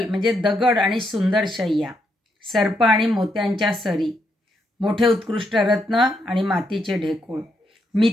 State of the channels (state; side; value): normal; both; correlation 0.78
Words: म्हणजे दगड आणि सुंदर शय्या, सर्प आणि मोत्यांच्या सरी, मोठे उत्कृष्ट रत्न आणि मातीचे ढेकूळ,